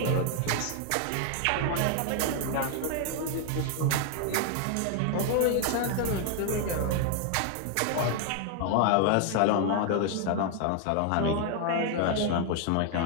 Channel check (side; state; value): both; different; correlation 0.00